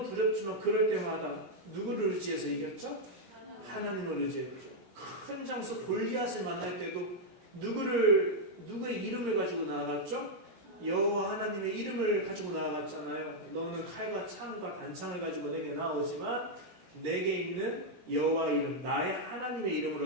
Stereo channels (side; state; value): left; late; 16 ms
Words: 두렵지만 그럴 때마다 누구를 의지해서 이겼죠? 하나님을 의지했죠. 큰 장수 골리앗을 만날 때도 누구의 이름을 가지고 나아갔죠? 여호와 하나님의 이름을 가지고 나아갔잖아요. 너는 칼과 창과 단창을 가지고 내게 나오지만 내게 있는 여호와 이름 나의 하나님의